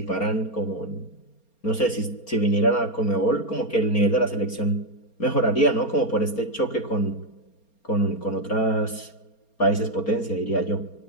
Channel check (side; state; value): right; late; 4.3 ms